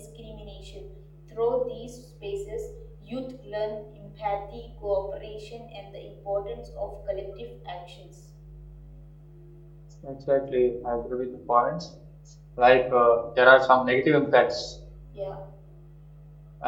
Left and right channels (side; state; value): both; identical; correlation 1.00